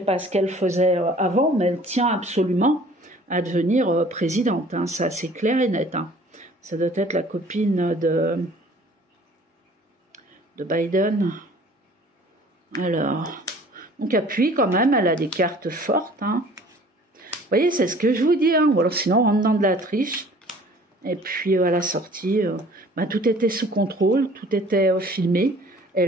pas ce qu'elle faisait avant, mais elle tient absolument à devenir présidente, hein. Ça, c'est clair et net, hein. Ça doit être la copine de Biden. Alors, donc appuie quand même, elle a des cartes fortes, hein. Vous voyez, c'est ce que je vous dis, hein. Ou alors sinon, on rentre dans de la triche. Et puis à la sortie, bah, tout était sous contrôle, tout était filmé. Et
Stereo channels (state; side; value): normal; both; correlation 0.51